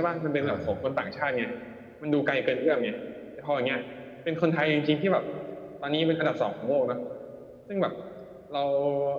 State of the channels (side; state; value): both; identical; correlation 1.00